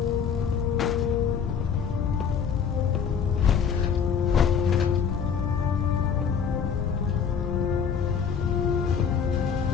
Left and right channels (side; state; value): right; quieter; 6.9 dB